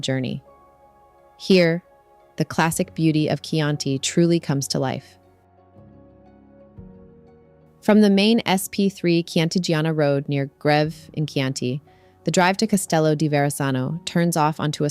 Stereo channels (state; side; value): identical; both; correlation 1.00